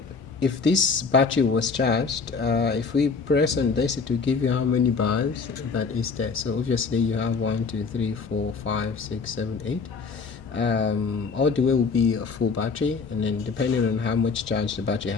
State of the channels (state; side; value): quieter; right; 4.9 dB